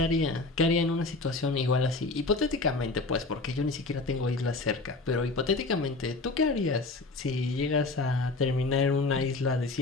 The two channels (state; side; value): quieter; right; 3.4 dB